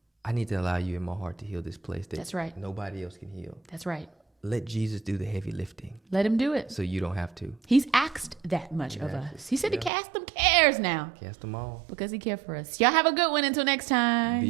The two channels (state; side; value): drops out; left; at 9.9 s